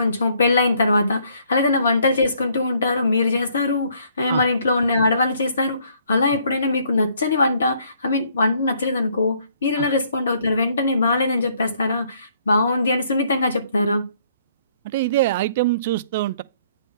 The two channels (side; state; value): both; inverted; correlation -0.65